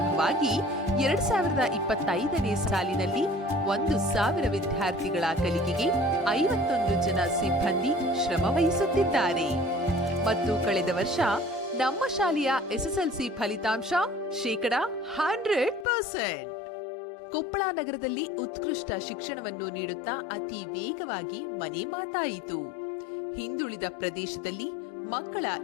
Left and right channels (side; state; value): right; drops out; at 15.9 s